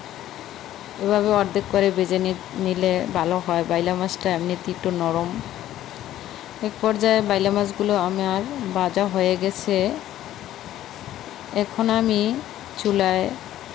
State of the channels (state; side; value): quieter; right; 13.0 dB